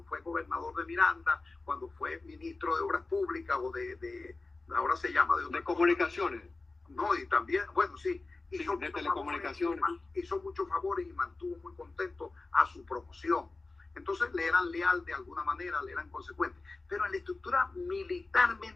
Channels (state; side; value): quieter; right; 3.5 dB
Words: fue gobernador de Miranda, cuando fue ministro de Obras Públicas o ahora se llama de comunicaciones. No, y también, bueno, sí, hizo de telecomunicaciones. Hizo muchos favores y mantuvo muy contento a su promoción. Entonces le eran leal de alguna manera, le eran consecuentes. Pero en la estructura